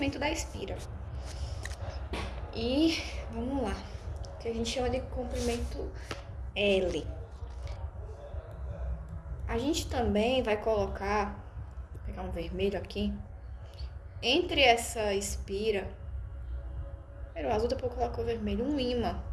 da espira. E vamos lá, que a gente chama de comprimento L. A gente também vai colocar, vou pegar um vermelho aqui, entre essa espira, primeiro o azul, depois eu coloco o vermelho, um ímã.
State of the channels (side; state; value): both; identical; correlation 1.00